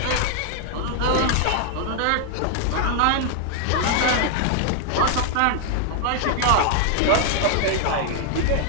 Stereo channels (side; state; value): both; different; correlation 0.00